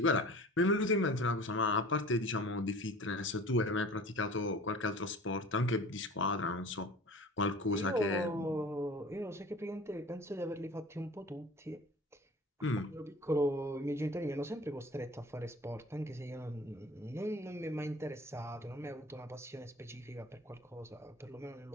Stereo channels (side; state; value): both; normal; correlation 0.42